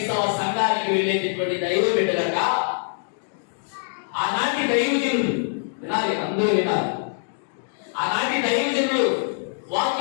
సంఘానికి వెళ్ళేటటువంటి దైవ బిడ్డలక ఆనాటి దైవజనులు వినాలి, అందరూ వినాలి. ఆనాటి దైవజనులు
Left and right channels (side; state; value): right; silent; digital silence